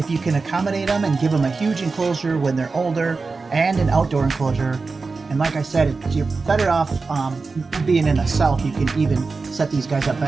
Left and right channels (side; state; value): left; quieter; 4.2 dB